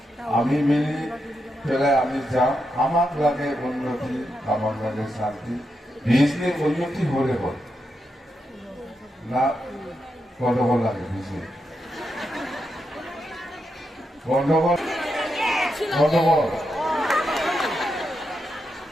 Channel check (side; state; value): both; normal; correlation 0.85